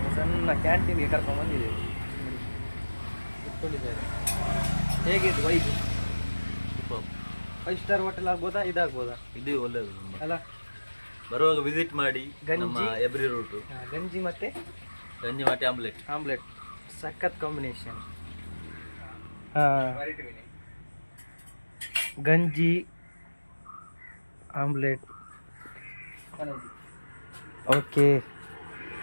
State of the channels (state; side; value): inverted; both; correlation -1.00